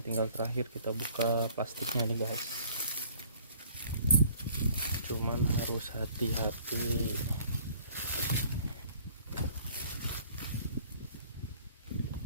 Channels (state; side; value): inverted; both; correlation -0.55